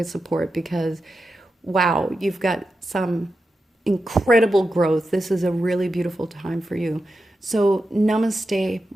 support, because wow, you've got some incredible growth. This is a really beautiful time for you. So namaste,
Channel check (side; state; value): both; normal; correlation 0.90